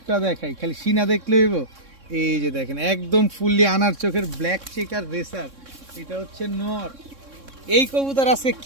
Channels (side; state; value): left; late; 3.6 ms